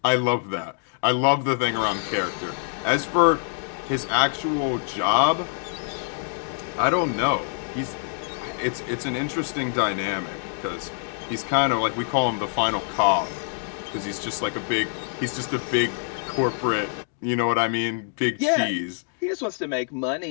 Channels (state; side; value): silent; right; digital silence